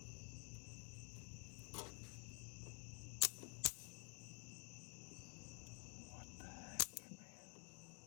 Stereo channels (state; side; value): quieter; right; 38.6 dB